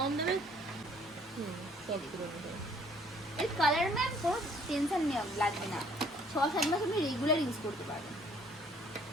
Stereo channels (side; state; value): both; normal; correlation 0.60